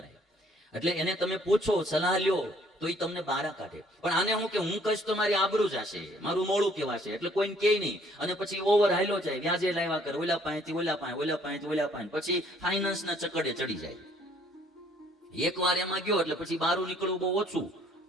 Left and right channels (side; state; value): both; normal; correlation 0.62